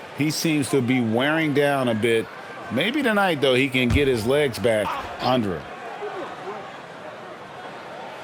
He seems to be wearing down a bit. Maybe tonight, though, he can get his legs back under him.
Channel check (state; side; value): identical; both; correlation 1.00